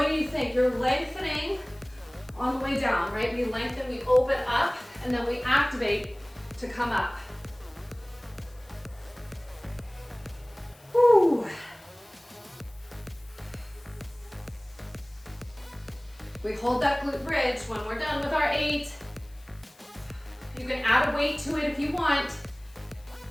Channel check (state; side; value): noise; left; hiss, 28 dB below the sound